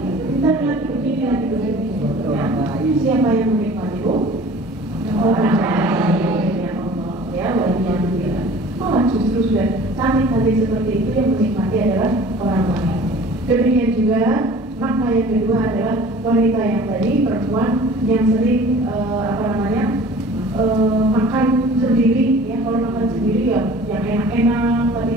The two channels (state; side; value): normal; both; correlation 0.46